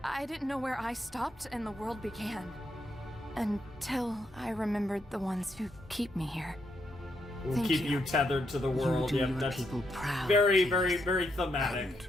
didn't know where I stopped and the world began. Until I remembered the ones who keep me here. Will Thank keep you. you tethered to the world. You do Yep, your that's people proud, very, very, very thematic. And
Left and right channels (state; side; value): normal; both; correlation 0.79